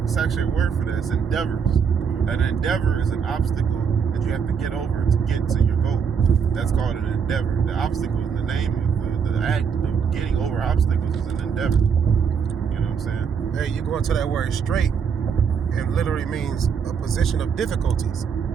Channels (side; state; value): left; quieter; 6.6 dB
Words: It's actually a word for that. It's endeavors. An endeavor is an obstacle that you have to get over to get to your goal. That's called an endeavor. The obstacle is the name of the act of getting over obstacles is an endeavor. You know what I'm saying? Hey, you go into that word straight, it literally means a position of difficulties.